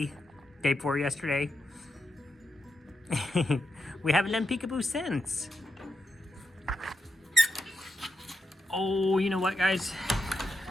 Day 4 yesterday? We haven't done Peekaboo since. Oh, you know what, guys?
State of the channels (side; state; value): both; normal; correlation 0.86